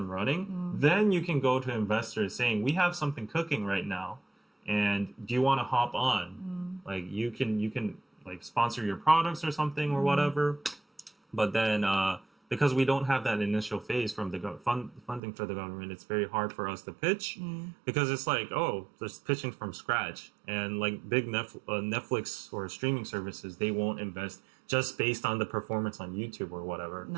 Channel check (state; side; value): drops out; left; at 15.2 s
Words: running, then you can go to investors saying, we have something cooking right now, and do you want to hop on? Like you can like sponsor your products or something or whatever. But then because we don't have that initial phase from the funding for the government, it's very hard for us to pitch, because it's like, oh, just pitching from scratch. And like big Netflix or streaming services, they won't invest just based on the performance on YouTube or whatever.